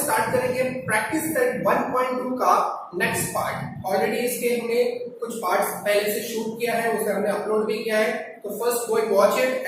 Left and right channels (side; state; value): both; identical; correlation 1.00